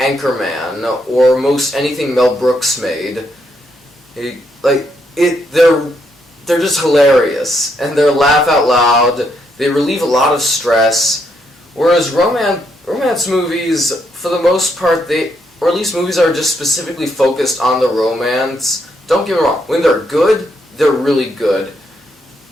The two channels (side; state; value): both; normal; correlation 0.76